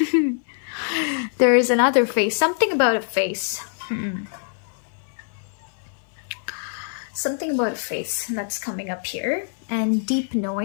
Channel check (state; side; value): silent; right; 56 dB below the other